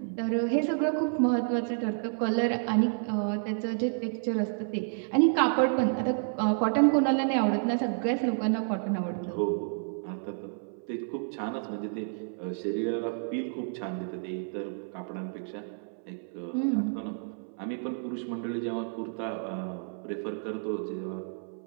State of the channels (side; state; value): left; silent; 58 dB below the other